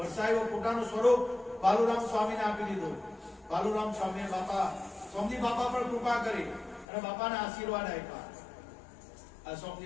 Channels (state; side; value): drops out; right; at 6.9 s